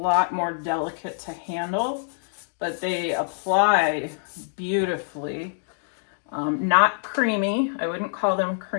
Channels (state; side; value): silent; right; digital silence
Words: more delicate to handle, but they apply beautifully. Not creamy. I wouldn't call them